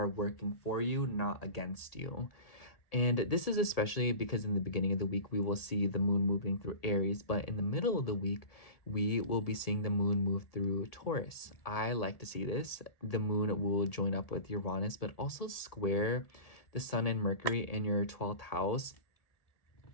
working for you, not against you. And this is especially because in the beginning of the week, we will see the moon moving through Aries, but in the middle of the week, we will be seeing the moon move through Taurus. I like to see this. The moon will join up with Uranus, but also square the sun and Mercury in your 12th house.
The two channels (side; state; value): right; late; 1.8 ms